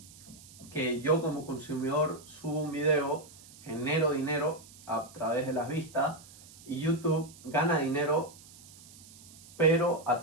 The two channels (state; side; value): noise; right; hiss, 21 dB below the sound